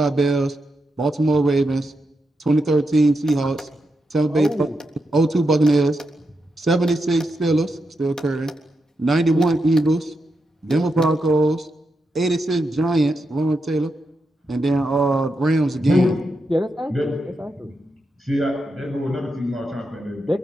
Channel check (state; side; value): normal; both; correlation 0.85